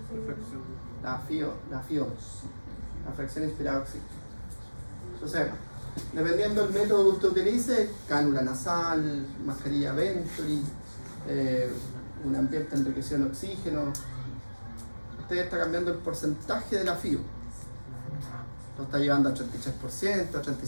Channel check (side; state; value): both; inverted; correlation -1.00